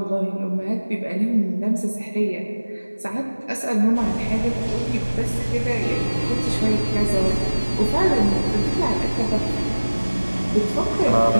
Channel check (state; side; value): inverted; both; correlation -1.00